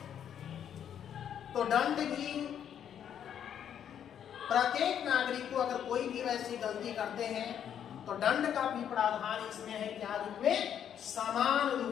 तो दंड भी प्रत्येक नागरिक को, अगर कोई भी वैसी गलती करते हैं तो दंड का भी प्रावधान इसमें है, क्या रूप में, समान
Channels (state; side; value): quieter; right; 9.2 dB